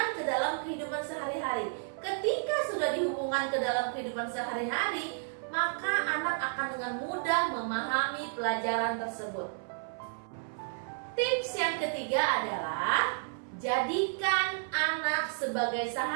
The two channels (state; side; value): silent; left; 57 dB below the other